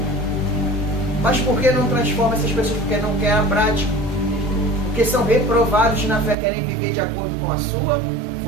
Mas por que não transforma essas pessoas? Porque não querem a prática. Porque são reprovados na fé, querem viver de acordo com a sua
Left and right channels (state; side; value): drops out; left; at 6.4 s